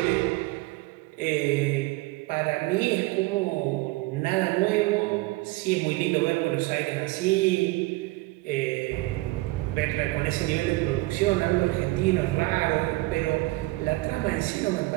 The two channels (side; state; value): left; quieter; 21.3 dB